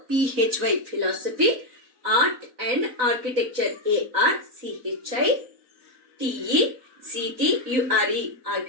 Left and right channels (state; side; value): late; left; 3.9 ms